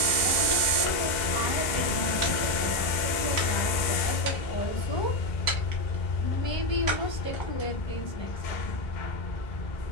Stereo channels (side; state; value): right; late; 2.0 ms